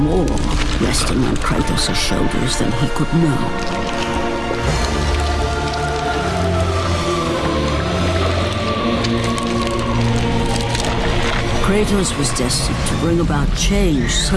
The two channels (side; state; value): both; identical; correlation 1.00